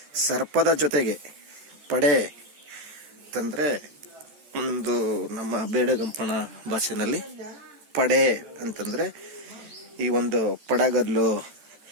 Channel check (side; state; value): left; late; 14 ms